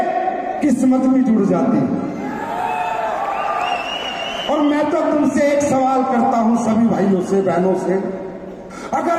किस्मत भी जुड़ जाती। और मैं तो तुमसे एक सवाल करता हूं, सभी भाइयों से, बहनों से,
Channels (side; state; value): both; identical; correlation 1.00